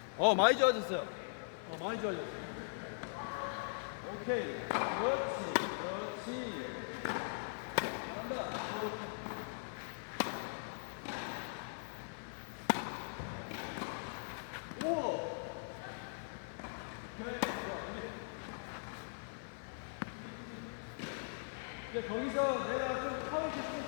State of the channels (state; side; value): silent; right; 51 dB below the other